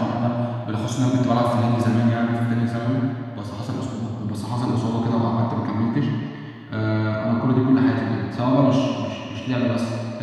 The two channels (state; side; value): identical; both; correlation 1.00